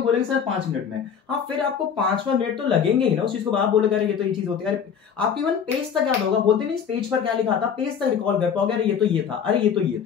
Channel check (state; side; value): quieter; right; 7.4 dB